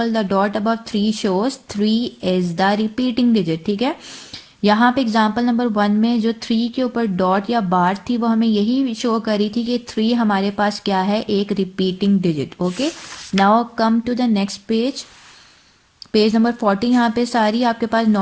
the dot above 3 shows 3 is the repeating digit. ठीक है, यहाँ पे एग्जाम्पल नंबर 1 में जो 3 के ऊपर डॉट या बार थी वो हमें यही शो करी थी कि 3 हमारे पास क्या है, एक repeating digit. Okay, now come to the next page, page number 40। यहाँ पे सारी आपके पास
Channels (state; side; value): identical; both; correlation 1.00